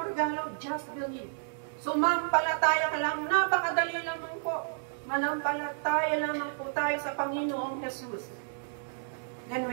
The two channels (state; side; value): silent; left; digital silence